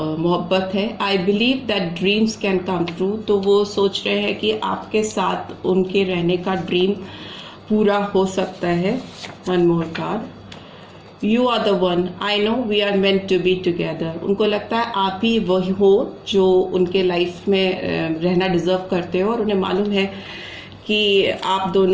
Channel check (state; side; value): identical; both; correlation 1.00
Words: है। I believe that dreams can come true, तो वो सोच रहे हैं कि आपके साथ उनके रहने का ड्रीम पूरा हो सकता है। One more card, you are the one, I know we are meant to be together. उनको लगता है आप ही वही हो जो उनके लाइफ में रहना डिजर्व करते हो, और उन्हें मालूम है कि आप